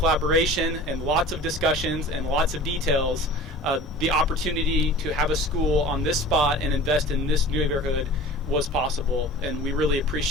and lots of discussions and lots of details, the opportunity to have a school on this spot and invest in this neighborhood was possible. And we really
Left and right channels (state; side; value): normal; both; correlation 0.41